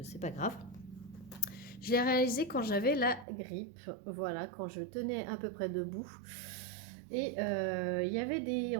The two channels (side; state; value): left; drops out; at 3.2 s